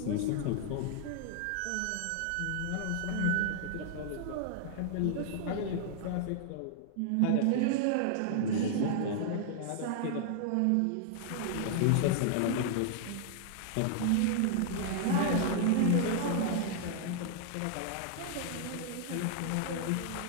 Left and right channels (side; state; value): both; different; correlation -0.01